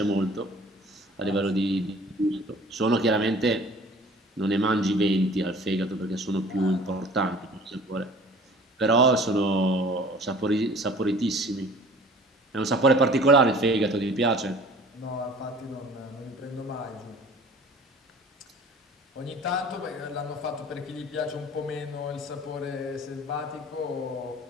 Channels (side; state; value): both; normal; correlation 0.48